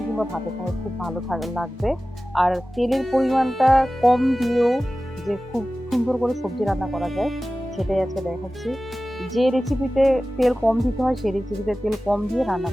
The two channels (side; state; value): both; normal; correlation 0.96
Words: কিংবা ভাতের সঙ্গে খুব ভালো লাগবে। আর তেলের পরিমাণটা কম দিয়েও যে খুব সুন্দর করে সবজি রান্না করা যায়, সেটাই আজকে দেখাচ্ছি। যে রেসিপিতে তেল কম দিতে হয় সেই রেসিপিতে তেল কম দিয়ে রান্না